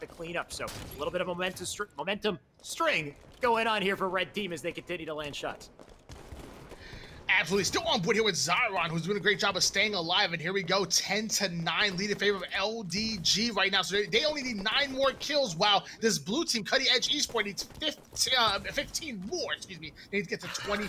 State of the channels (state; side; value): identical; both; correlation 1.00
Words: cleanup. So a little bit of momentum string going on here for Red Team as they continue to land shots. Absolutely. Still on board here with Zaron, who's doing a great job of staying alive. And here we go, 10-9, lead in favor of LDG right now. So they only need 9 more kills, while this blue team, Cutting Edge Esports, needs 15 more. Excuse me. They need to get to